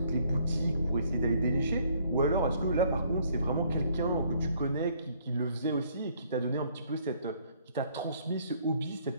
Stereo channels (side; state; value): both; inverted; correlation -0.64